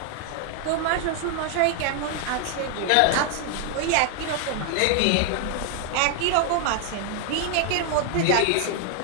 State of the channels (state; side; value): different; both; correlation 0.00